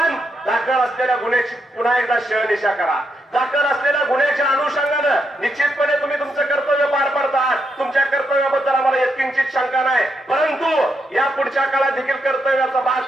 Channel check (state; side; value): normal; both; correlation 0.81